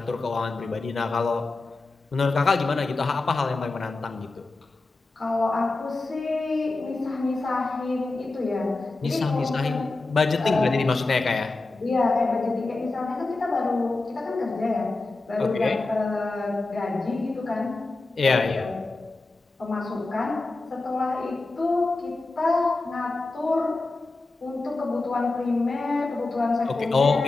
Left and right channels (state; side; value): quieter; right; 3.3 dB